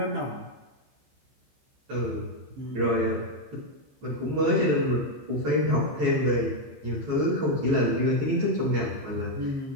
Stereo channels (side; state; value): left; late; 15 ms